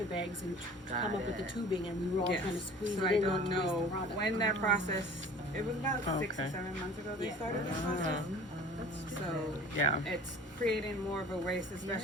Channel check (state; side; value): normal; both; correlation 0.44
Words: bags and come up with the tubing, and we were all Yes. trying to squeeze So it I in. don't not to waste the know product. when that process, it was about 6 or Okay. 7 months ago they Yeah. started this process. So Yeah. it's creating more of a waste,